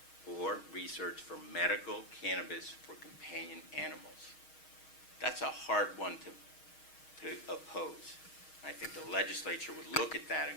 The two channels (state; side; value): late; right; 6.4 ms